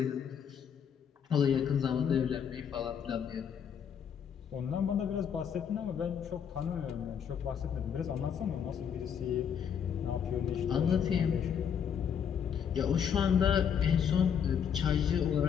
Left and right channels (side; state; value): right; quieter; 7.9 dB